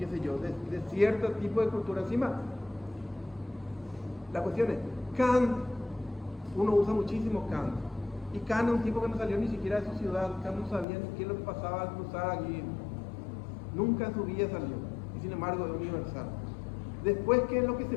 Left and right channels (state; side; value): drops out; right; at 10.9 s